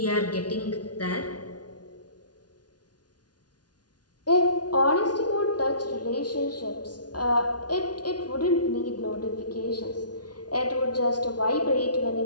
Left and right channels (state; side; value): late; right; 0.69 ms